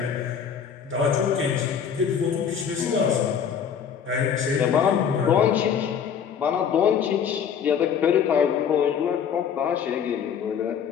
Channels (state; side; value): quieter; right; 7.6 dB